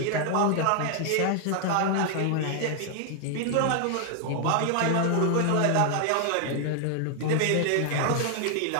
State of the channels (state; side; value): different; both; correlation 0.00